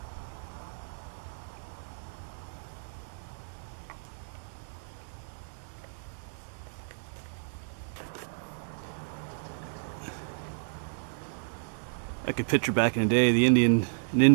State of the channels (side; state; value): left; silent; digital silence